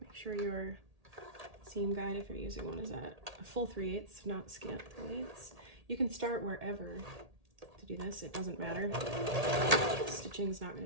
sure your seam guide, if you're using one, is at a full 3/8, not scant 3/8. You can start wherever to do this, it doesn't matter. Stitching is not going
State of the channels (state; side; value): late; left; 1.8 ms